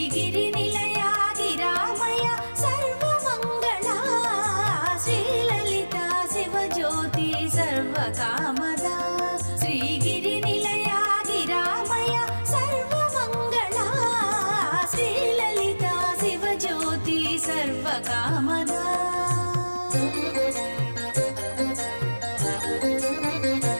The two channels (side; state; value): both; inverted; correlation -1.00